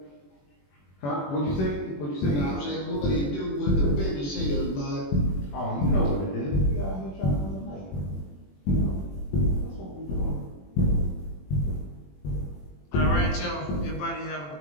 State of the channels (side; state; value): right; late; 21 ms